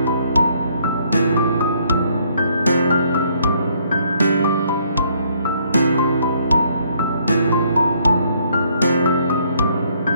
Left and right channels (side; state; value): both; inverted; correlation -0.67